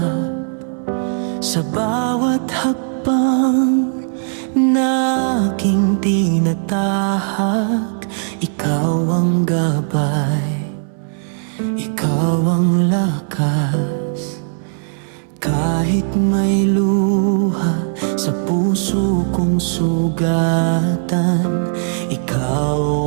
Sa bawat hakbang na aking tinatahak, ikaw ang gabay, ikaw ang lakas. Kahit may luha sa puso kong sugatan, ikaw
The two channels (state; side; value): silent; left; 67 dB below the other